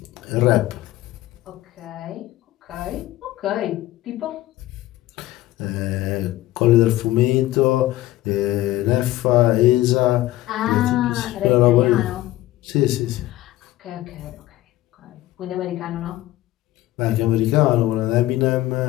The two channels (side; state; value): right; quieter; 15.9 dB